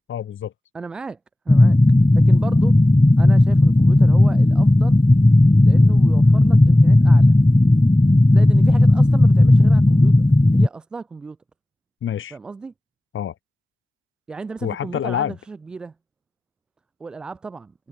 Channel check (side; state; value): both; normal; correlation 0.97